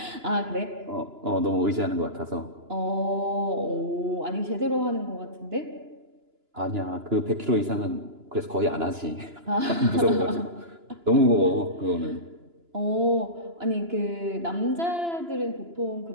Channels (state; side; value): late; left; 2.9 ms